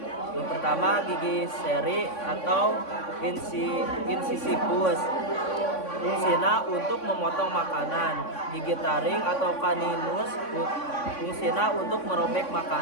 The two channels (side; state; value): right; late; 3.5 ms